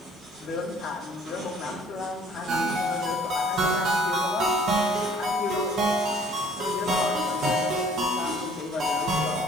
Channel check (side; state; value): both; normal; correlation 0.55